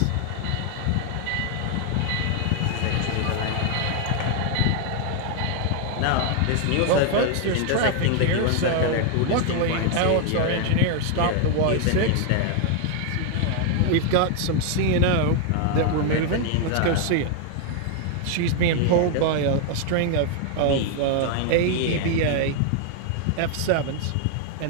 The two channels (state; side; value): different; both; correlation 0.00